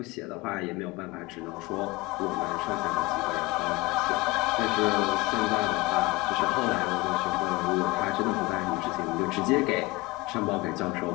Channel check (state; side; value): quieter; right; 21.7 dB